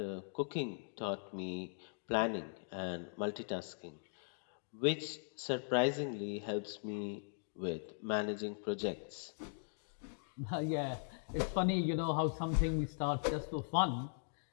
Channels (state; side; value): silent; right; digital silence